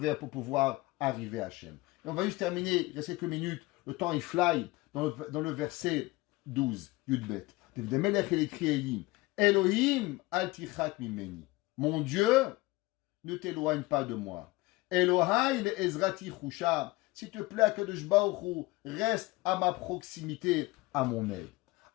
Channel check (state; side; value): quieter; right; 21.4 dB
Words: pour pouvoir arriver à Hachem. Et on va juste terminer, il reste quelques minutes, le temps il fly, dans le verset 12, Yudbet. David Amelech, il écrit et il dit, Elohim al tichak mimeni. Mon Dieu, ne t'éloigne pas de moi. Elohai le ezrati chusha. S'il te plaît, Kadosh Baruch Hu, reste à ma proximité, à mon aide.